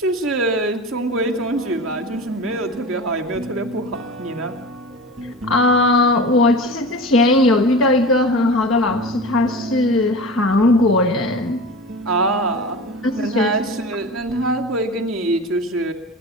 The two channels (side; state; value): both; normal; correlation 0.32